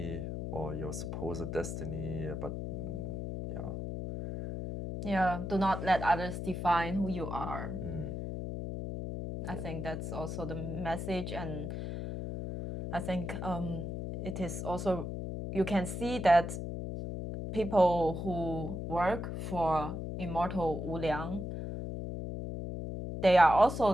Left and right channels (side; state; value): left; noise; hum, 5 dB below the sound